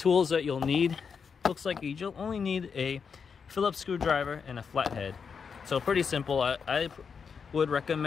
that you'll need, looks like you'll only need a Phillips screwdriver and a flathead. So pretty simple. I would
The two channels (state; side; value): quieter; right; 6.1 dB